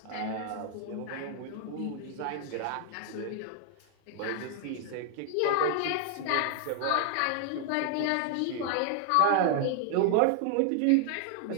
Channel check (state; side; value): different; both; correlation 0.00